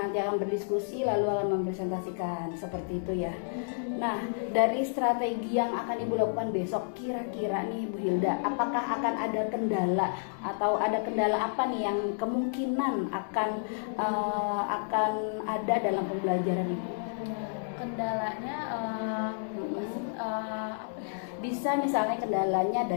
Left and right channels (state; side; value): silent; right; digital silence